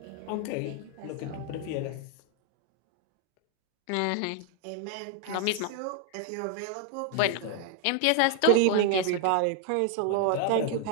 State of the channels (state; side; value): different; both; correlation 0.00